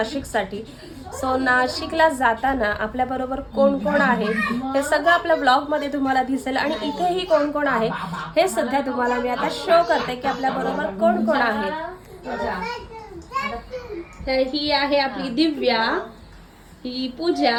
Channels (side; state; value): both; identical; correlation 1.00